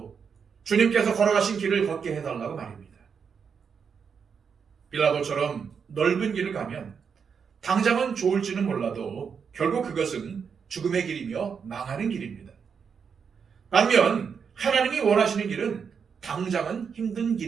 주님께서 걸어가신 길을 걷게 해달라고 말입니다. 빌라도처럼 넓은 길을 가면 당장은 좋을지는 몰라도 결국 그것은 죽음의 길이며 망하는 길입니다. 반면 하나님이 원하시는 길은 당장은 힘든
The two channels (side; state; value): left; quieter; 6.4 dB